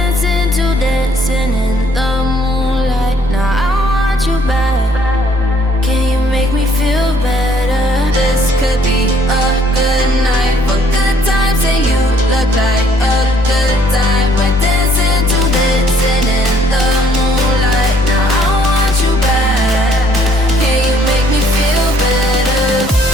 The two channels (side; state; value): both; normal; correlation 0.63